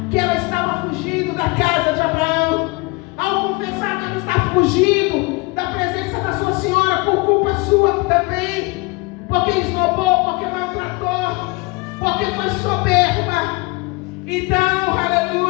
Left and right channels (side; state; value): right; quieter; 26.0 dB